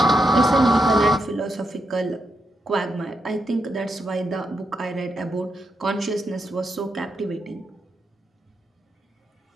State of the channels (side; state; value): both; normal; correlation 0.83